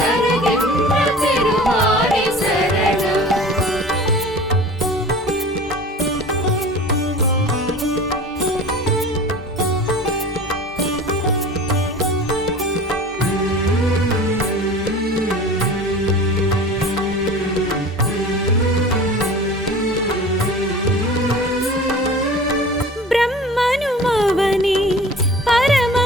திருமாலே சரணம். பிரம்மனுமவனே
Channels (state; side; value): normal; both; correlation 0.40